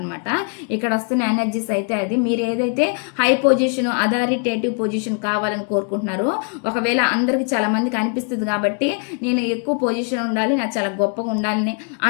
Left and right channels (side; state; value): right; quieter; 38.6 dB